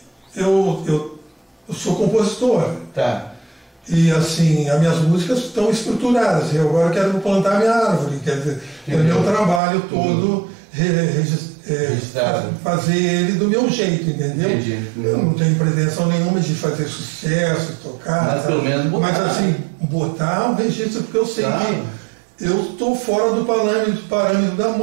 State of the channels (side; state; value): left; drops out; at 9.6 s